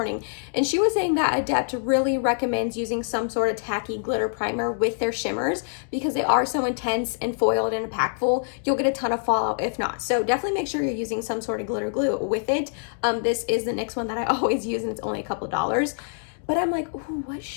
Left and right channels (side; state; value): right; silent; digital silence